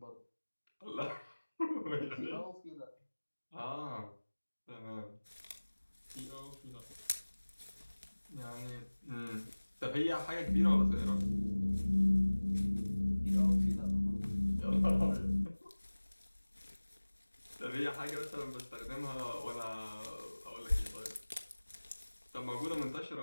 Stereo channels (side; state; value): both; inverted; correlation -1.00